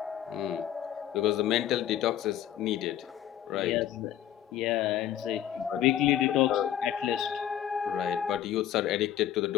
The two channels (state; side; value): quieter; right; 11.0 dB